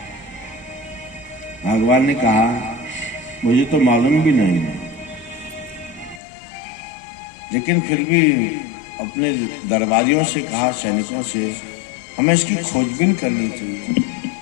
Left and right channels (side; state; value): right; drops out; at 6.2 s